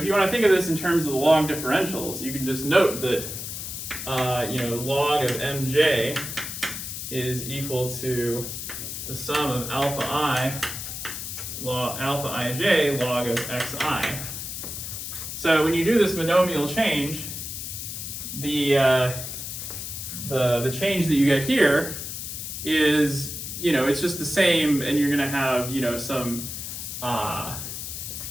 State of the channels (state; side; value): noise; left; hiss, 7 dB below the sound